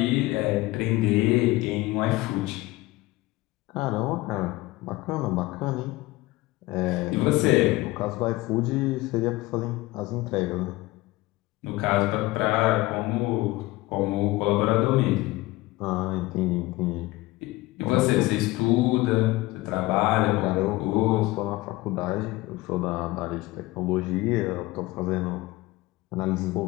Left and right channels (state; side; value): quieter; right; 19.4 dB